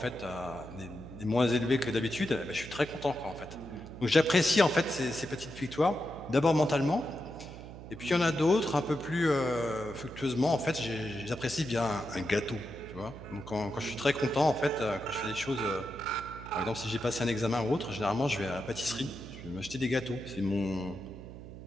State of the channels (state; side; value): noise; right; hum, 13 dB below the sound